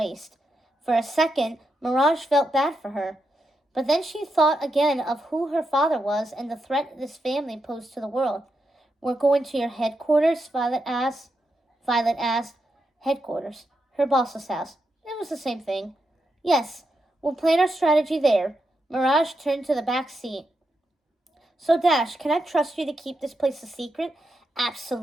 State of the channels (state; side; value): normal; both; correlation 0.84